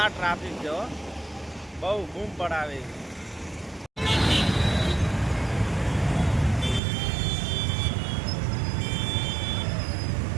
ટ્રાફિક છે હો, બહુ બૂમ પડાવે.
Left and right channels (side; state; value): left; drops out; at 6.8 s